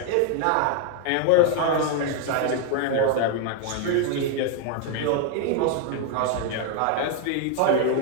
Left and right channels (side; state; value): both; different; correlation 0.00